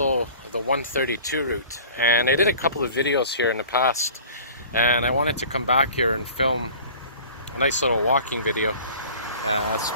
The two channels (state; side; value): inverted; both; correlation -0.45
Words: the 132 route. And I did a couple of videos here in the past, and I wanted to come back here and film a nice little walking video.